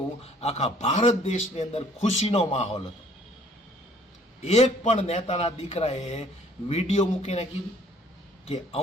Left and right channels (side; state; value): both; normal; correlation 0.57